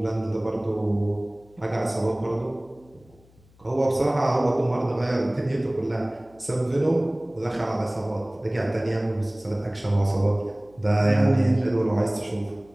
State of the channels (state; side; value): noise; left; hum, 29 dB below the sound